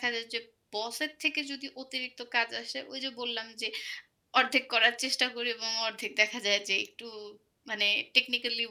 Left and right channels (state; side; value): identical; both; correlation 1.00